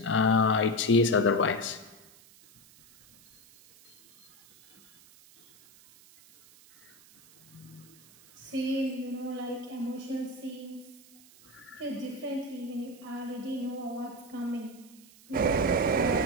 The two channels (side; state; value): right; noise; hiss, 25 dB below the sound